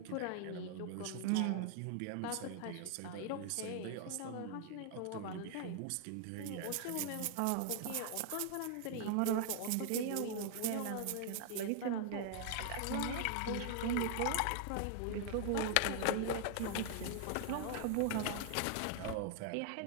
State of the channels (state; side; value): different; both; correlation 0.00